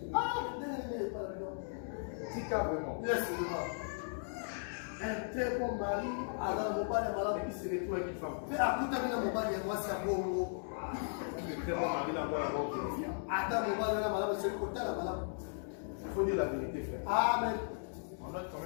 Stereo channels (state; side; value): silent; right; digital silence